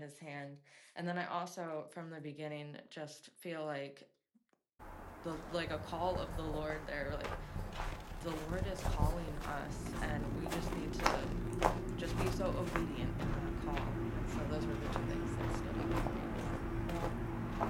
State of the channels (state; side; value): identical; both; correlation 1.00